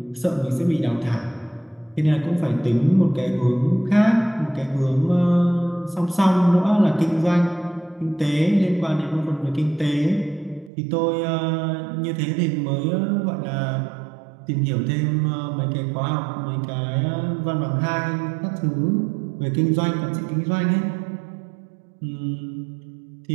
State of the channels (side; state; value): left; drops out; at 10.7 s